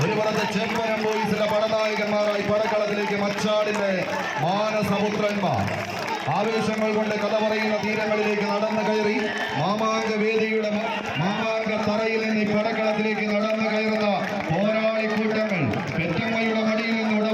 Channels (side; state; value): both; identical; correlation 1.00